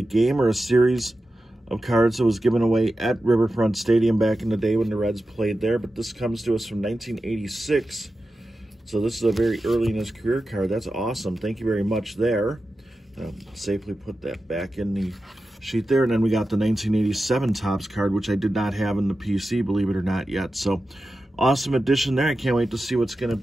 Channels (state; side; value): normal; both; correlation 0.92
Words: game or a series of cards that was given away at Riverfront Stadium back in the day when the Reds played there. But this comes to us from 1986. So this is a very early in his career card. That's awesome. Thank you very much there. Safely put that back in the sheet there. And then we got the 1987 Topps card, which I did not have in the PC, believe it or not, yet. So awesome addition there. I can't wait to see what's going to